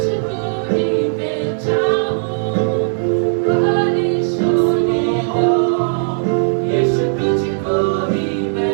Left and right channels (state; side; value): silent; left; 68 dB below the other